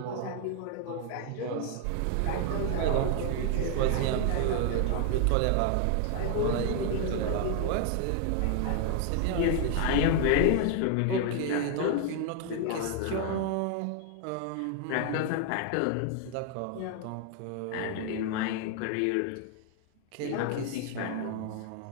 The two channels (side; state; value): both; different; correlation 0.00